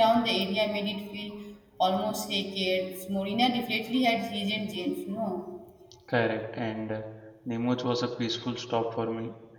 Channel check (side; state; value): both; identical; correlation 1.00